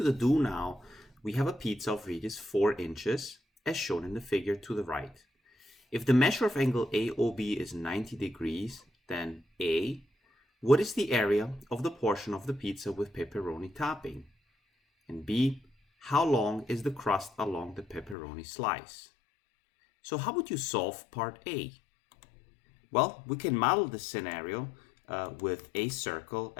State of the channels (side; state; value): right; drops out; at 18.2 s